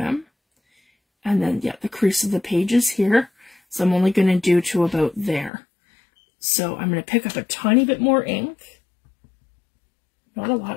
And then, yeah, the crease of the page is here. So I'm only going to do to about there. So I'm going to pick up a tiny bit more ink. Not a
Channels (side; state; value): right; drops out; at 5.5 s